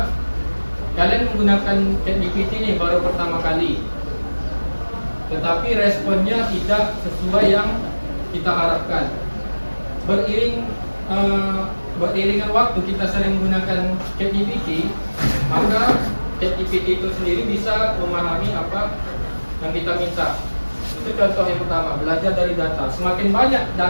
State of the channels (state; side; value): inverted; both; correlation -1.00